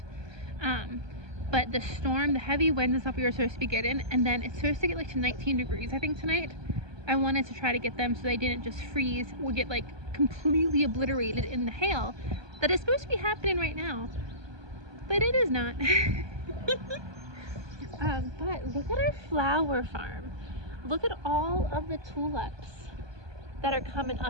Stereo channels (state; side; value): late; left; 1.2 ms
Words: But the storm, the heavy wind and stuff we were supposed to be getting, and then it's supposed to get like to 19 degrees, I think, tonight. I wanted to try to get them so they didn't just freeze or get like completely obliterated in the hail that is supposed to be happening right now. But it is not. But look at our flower farm. Look at all of the tulips that are coming